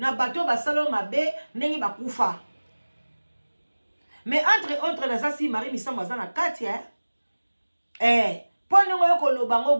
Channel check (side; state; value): both; inverted; correlation -1.00